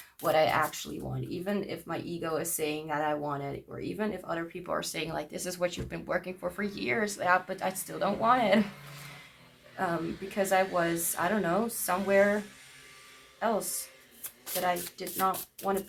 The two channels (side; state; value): both; identical; correlation 1.00